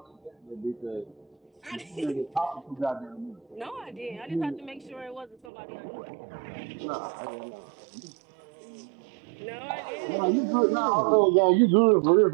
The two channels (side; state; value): left; drops out; at 5.5 s